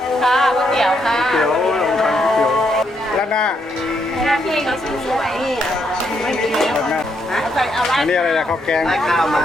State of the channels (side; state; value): both; normal; correlation 0.77